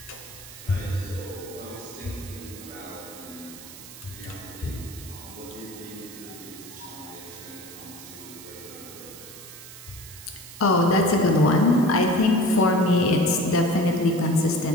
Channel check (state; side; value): noise; right; hiss, 15 dB below the sound